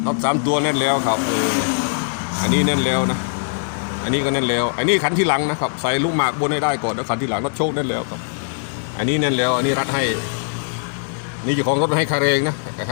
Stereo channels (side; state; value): right; silent; digital silence